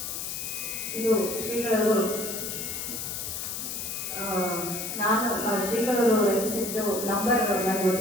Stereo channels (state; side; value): noise; left; hiss, 5 dB below the sound